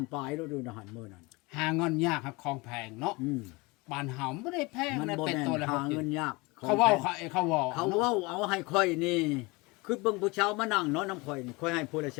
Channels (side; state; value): right; quieter; 25.1 dB